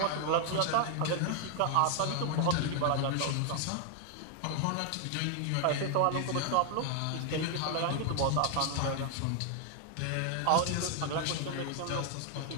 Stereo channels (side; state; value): both; different; correlation 0.00